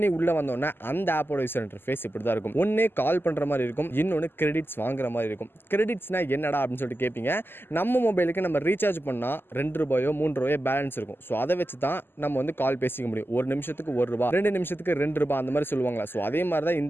உள்ளே வந்தோடனே அந்த ஆப்போட யூசர் இன்டர்ஃபேஸ் இப்படி தான் இருக்கும். ஒன்றே கால் பண்ணுற மாதிரி இருக்கும், இன்னொன்று கிரெடிட்ஸ் வாங்குற மாதிரி இருக்கும். கிரெடிட்ஸ்னால் என்னடா அப்படின்னு சொல்லிட்டு கேட்பீங்க. நம்ம மொபைலுக்கு நம்ம ரீசார்ஜ் பண்ணால் 2 ரூபாயோ 3 ரூபாயோ பேலன்ஸ் இருக்கும். ஸோ அதை வச்சு தான் நம்ம வந்து கால் பேசிக்க முடியும். ஒரு நிமிஷத்துக்கு 1 ரூபா, 2 நிமிஷத்துக்கு 2 ரூபாய் அந்த மாதிரி சொல்லுவாங்களா. ஸோ அதே மாதிரி தான்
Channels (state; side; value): late; right; 0.10 ms